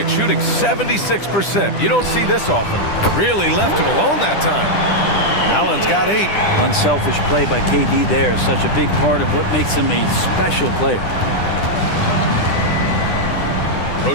shooting 76%. You don't see this often. Really left him alone that time. Allen's got 8. Unselfish play by KD there. Such a big part of what makes him a special player.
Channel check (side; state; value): right; late; 10 ms